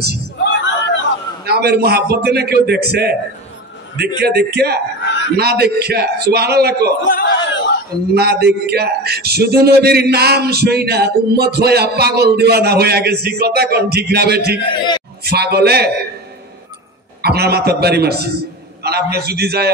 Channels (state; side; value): normal; both; correlation 0.28